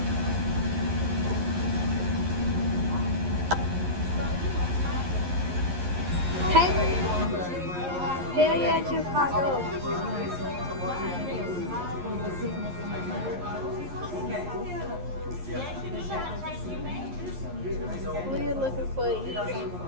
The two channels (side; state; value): left; late; 11 ms